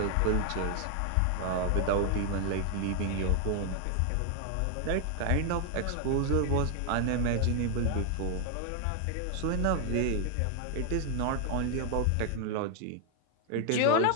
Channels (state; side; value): different; both; correlation 0.00